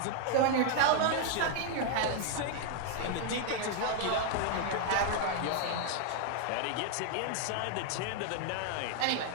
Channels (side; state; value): both; different; correlation 0.00